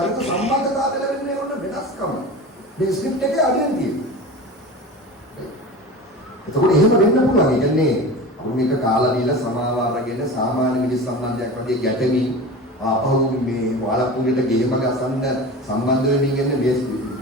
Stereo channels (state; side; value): normal; both; correlation 0.33